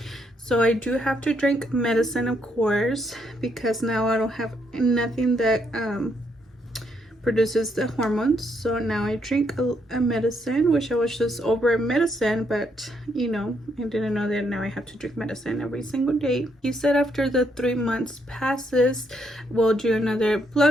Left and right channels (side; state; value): both; normal; correlation 0.75